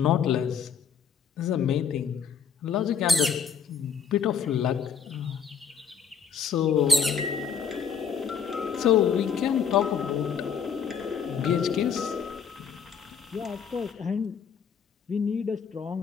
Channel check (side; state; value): right; quieter; 7.0 dB